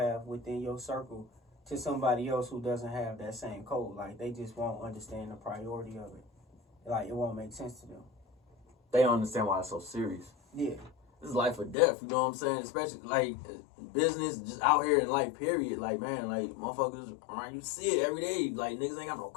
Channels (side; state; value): right; drops out; at 11.8 s